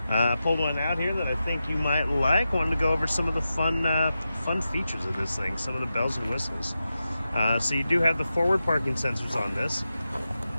I pulled one out here that I think you might like. Wanted to go over some of the fun features of this thing, some of the bells and whistles. So you do have the forward parking sensors on this,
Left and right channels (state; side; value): inverted; both; correlation -0.90